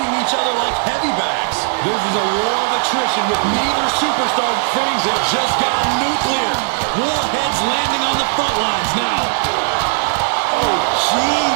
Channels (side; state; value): left; silent; 58 dB below the other